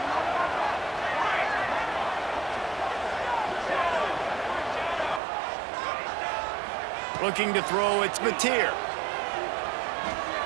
Looking to throw, it's Mateer.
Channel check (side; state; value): left; drops out; at 5.2 s